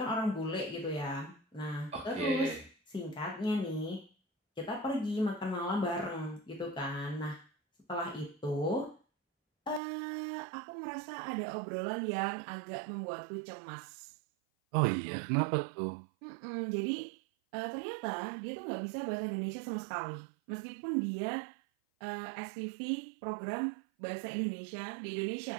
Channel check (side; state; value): left; drops out; at 9.8 s